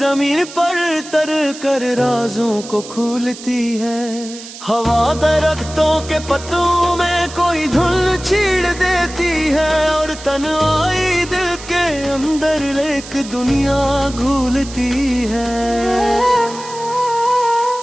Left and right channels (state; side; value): noise; right; hiss, 14 dB below the sound